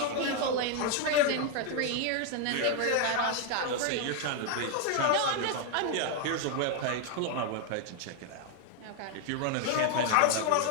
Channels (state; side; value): different; both; correlation 0.00